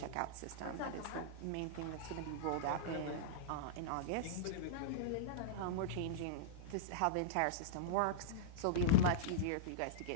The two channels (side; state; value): both; different; correlation -0.03